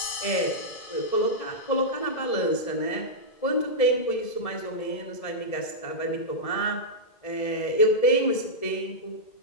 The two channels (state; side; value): late; right; 1.7 ms